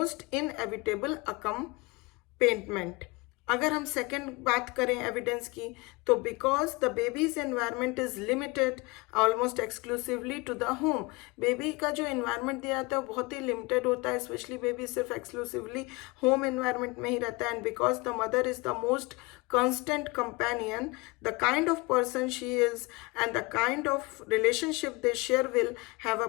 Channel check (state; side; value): quieter; right; 25.1 dB